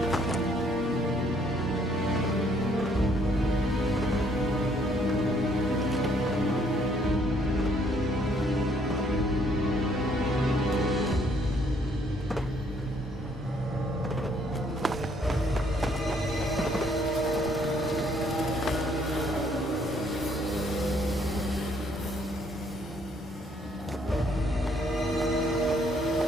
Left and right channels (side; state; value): both; normal; correlation 0.66